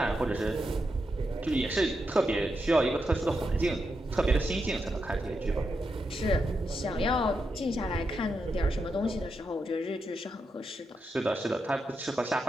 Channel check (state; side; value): normal; both; correlation 0.85